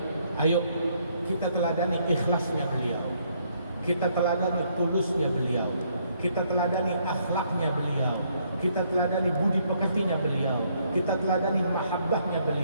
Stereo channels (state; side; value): inverted; both; correlation -0.70